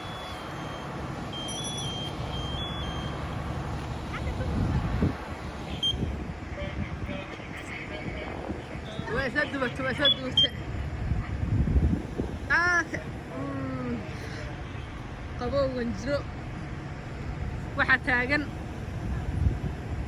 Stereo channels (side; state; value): both; identical; correlation 1.00